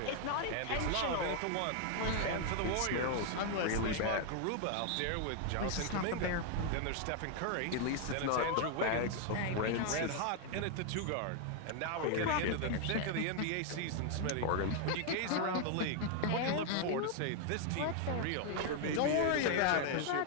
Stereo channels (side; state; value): both; different; correlation 0.00